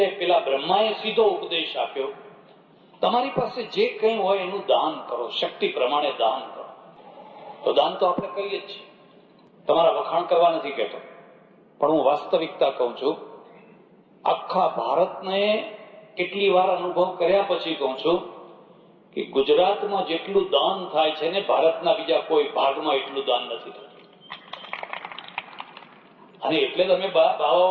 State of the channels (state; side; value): identical; both; correlation 1.00